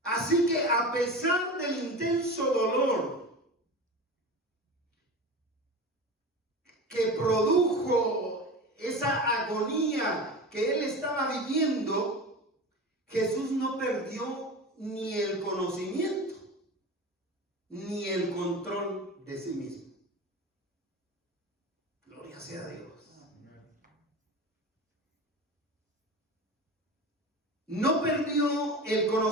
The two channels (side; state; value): both; normal; correlation 0.30